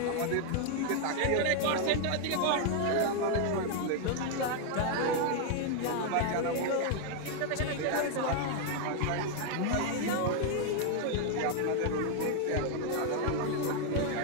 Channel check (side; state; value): both; different; correlation 0.00